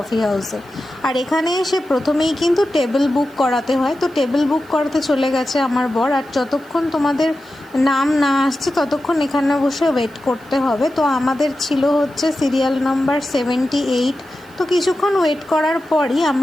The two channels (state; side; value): noise; right; hiss, 29 dB below the sound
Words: হাউসে। আর এখানে এসে প্রথমেই কিন্তু টেবিল বুক করাতে হয়, তো টেবিল বুক করাতে চলে গেছে আমার বর। আর যতক্ষণ তোমাদের নাম না আসছে ততক্ষণ এখানে বসে ওয়েট করতে হবে। তো আমাদের ছিল হচ্ছে সিরিয়াল নাম্বার 78। তো কিছুক্ষণ ওয়েট করার পরই